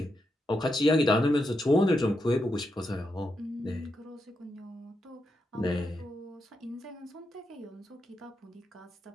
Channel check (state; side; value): normal; both; correlation 0.84